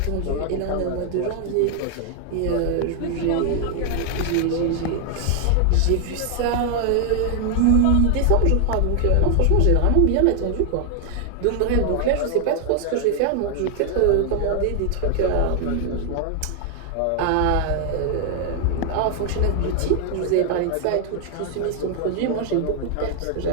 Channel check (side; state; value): both; different; correlation 0.00